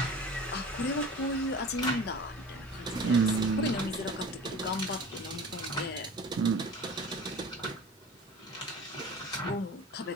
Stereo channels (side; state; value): both; normal; correlation 0.39